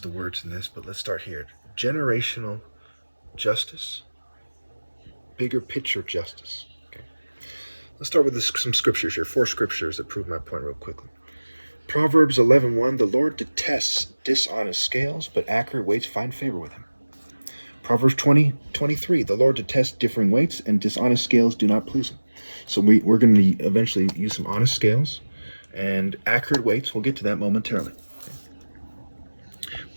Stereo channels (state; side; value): inverted; both; correlation -1.00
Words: the words in this, but let's start here. Generational justice, bigger picture justice. Okay. Let's start with some scriptures here. Four scriptures that prove my point real quickly. Proverbs 11:1, the Lord detests dishonest scales, but accurate weights find favor with him. Proverbs 20:23, the Lord detests differing weights, and dishonest scales do not please him. So we're going to eventually use some honest scales and accurate weights. We'll get to that momentarily.